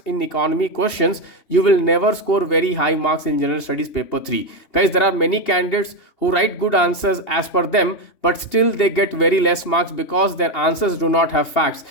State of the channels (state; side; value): late; right; 2.8 ms